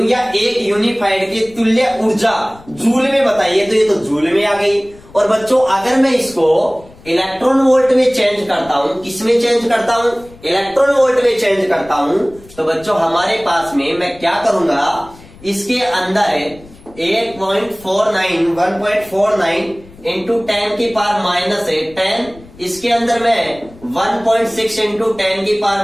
या एक यूनिफाइड की तुल्य ऊर्जा जूल में बताइए, तो ये तो जूल में आ गई। और बच्चों अगर मैं इसको इलेक्ट्रॉन वोल्ट में चेंज करता हूं, किसमें चेंज करता हूं, इलेक्ट्रॉन वोल्ट में चेंज करता हूं, तो बच्चों हमारे पास में मैं क्या करूंगा, इसके अंदर 1.49 इंटू 10 की पावर -10, इसके अंदर मैं 1.6 इंटू 10 की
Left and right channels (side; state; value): left; noise; rumble, 23 dB below the sound